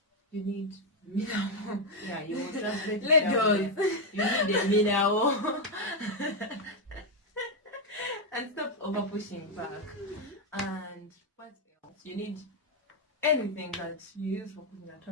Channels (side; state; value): both; normal; correlation 0.03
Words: You need mineral. You will translate it. You need the mineral. And stop over pushing back. And what else? You need anything that you use for cooking at